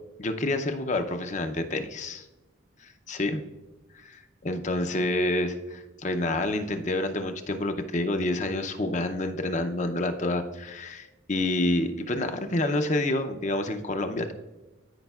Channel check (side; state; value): both; normal; correlation 0.50